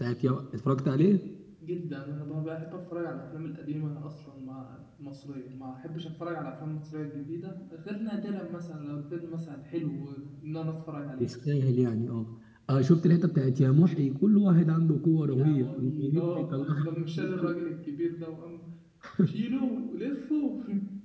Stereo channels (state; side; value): identical; both; correlation 1.00